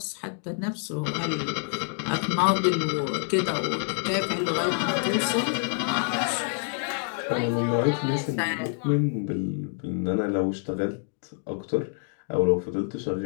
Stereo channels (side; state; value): right; silent; 60 dB below the other